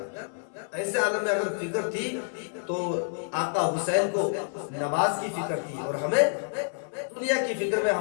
ایسے عالم میں اگر فکر تھی تو آقا حسین کو نماز کی فکر تھی، اور ہمیں دنیا کی فکر میں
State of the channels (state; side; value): silent; right; 59 dB below the other